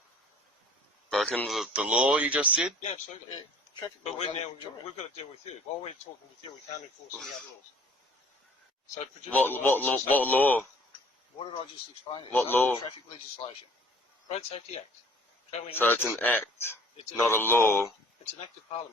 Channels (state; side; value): normal; both; correlation 0.52